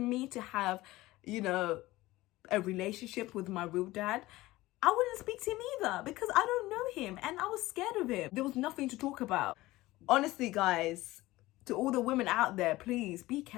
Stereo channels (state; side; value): quieter; right; 18.3 dB